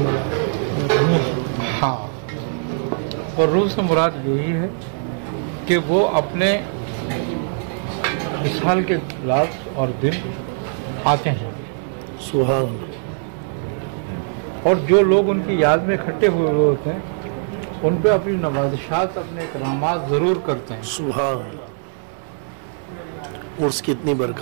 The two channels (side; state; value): left; silent; digital silence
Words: हाँ, वर्रूह से मुराद यही है कि वो अपने विशाल के रात और दिन आते हैं। सुभान। और जो लोग उनकी याद में इकट्ठे हुए होते हैं उन पे अपनी नवाज़िशात, अपने इकरामात ज़रूर करते हैं। सुभान। उर्स की इतनी